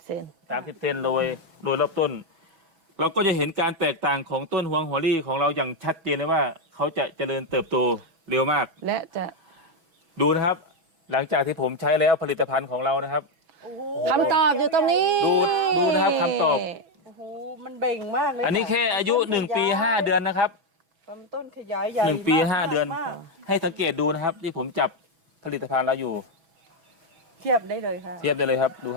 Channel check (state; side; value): late; left; 6.1 ms